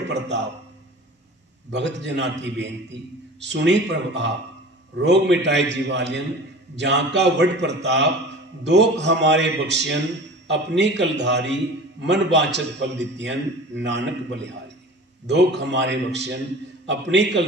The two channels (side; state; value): both; normal; correlation 0.39